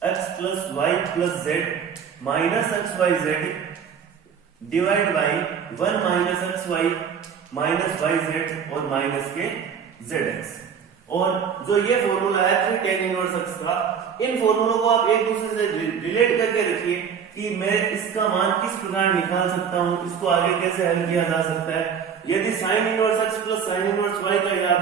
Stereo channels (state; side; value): quieter; left; 7.2 dB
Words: x plus y plus z minus xyz divide by 1 minus xy minus yz और minus के zx। और जो ये formula है 3 tan इनवर्स x का, इन फॉर्मूलों को आप एक दूसरे से रिलेट करके रखिए कि मैं इसका मान किस प्रकार निकाल सकता हूं, इसको आगे कैसे हल किया जा सकता है। यदि sin inverse x plus sin inverse y का